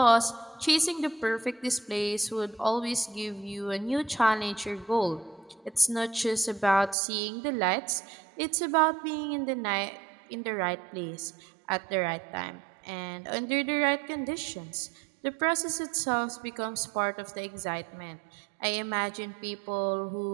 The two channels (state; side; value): drops out; left; at 7.0 s